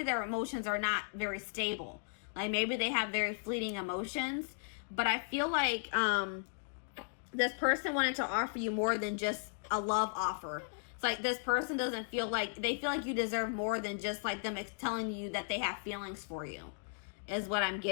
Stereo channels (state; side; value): silent; right; digital silence